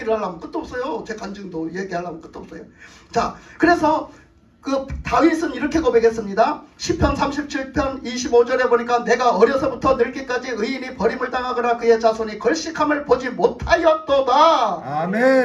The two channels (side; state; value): both; identical; correlation 1.00